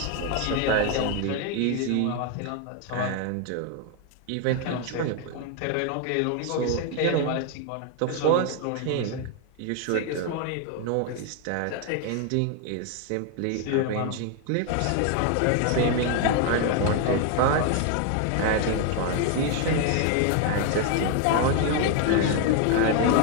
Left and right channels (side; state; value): both; different; correlation 0.01